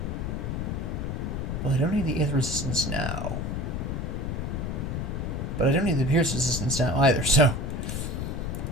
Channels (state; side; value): noise; left; rumble, 2 dB below the sound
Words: Well, I don't need the Aether resistance now. But I don't need the Pierce resistance now either, so